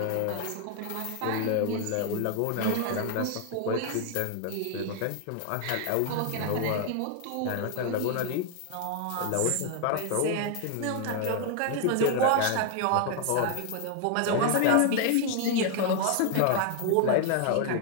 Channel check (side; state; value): both; different; correlation 0.00